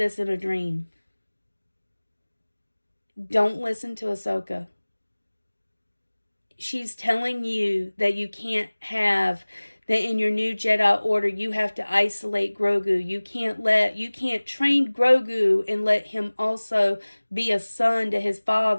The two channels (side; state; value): both; inverted; correlation -1.00